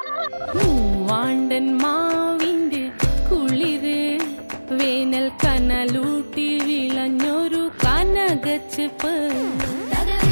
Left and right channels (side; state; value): both; inverted; correlation -1.00